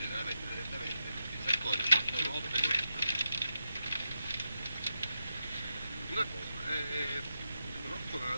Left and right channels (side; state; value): both; inverted; correlation -0.86